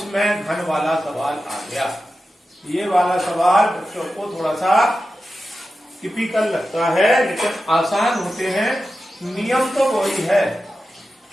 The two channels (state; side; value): normal; both; correlation 0.92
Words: घन वाला सवाल आ गया। ये वाला सवाल बच्चों को थोड़ा सा टिपिकल लगता है, लेकिन आसान होते हैं। नियम तो वही है।